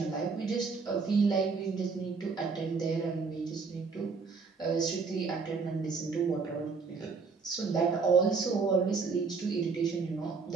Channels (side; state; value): left; quieter; 4.8 dB